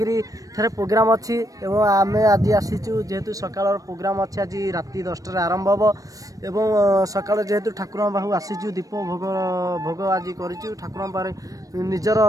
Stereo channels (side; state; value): left; late; 0.16 ms